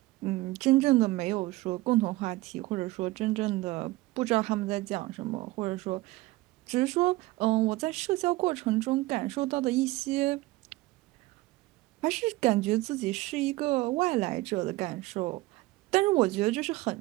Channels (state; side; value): quieter; left; 19.6 dB